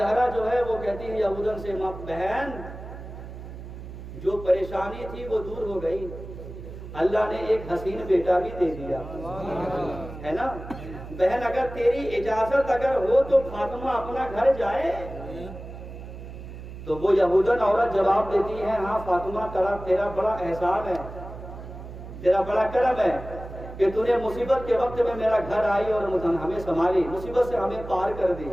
جو ہے وہ کہتی ہے یہودن سے, ماں بہن جو پریشانی تھی وہ دور ہو گئی, اللہ نے ایک حسین بیٹا بھی دے دیا ہے نا. بہن اگر تیری اجازت اگر ہو تو فاطمہ اپنا گھر جائے. تو وہ یہودن عورت جواب دیتی ہے, ہاں فاطمہ تیرا بڑا احسان ہے, تیرا بڑا کرم ہے کہ تو نے مصیبت کے وقت میں میرا گھر آئی اور ہمیں سنبھالی, مصیبت سے ہمیں پار کر دی.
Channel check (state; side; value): noise; right; hum, 12 dB below the sound